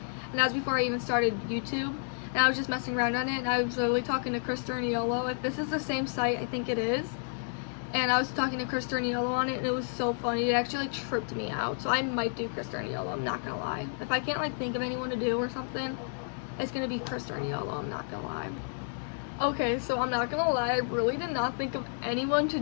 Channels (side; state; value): right; silent; digital silence